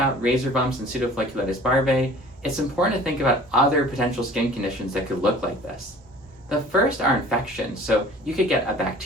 razor bumps and pseudofolliculitis barbae, it's important to think about other potential skin conditions that could look like this. The first are infections. So you could get a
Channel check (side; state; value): both; normal; correlation 0.47